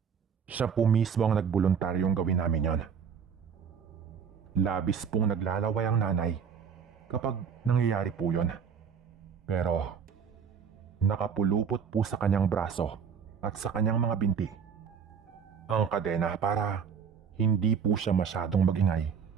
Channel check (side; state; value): left; quieter; 6.9 dB